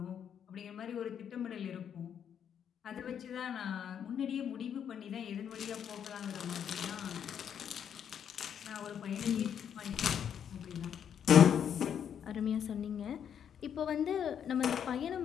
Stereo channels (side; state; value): right; quieter; 8.5 dB